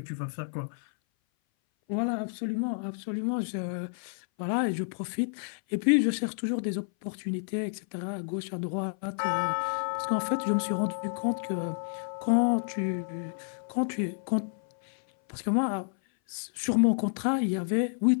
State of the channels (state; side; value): silent; right; 58 dB below the other